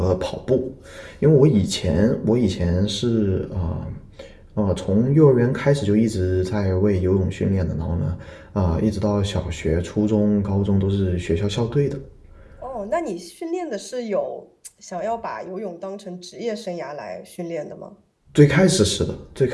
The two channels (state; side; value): identical; both; correlation 1.00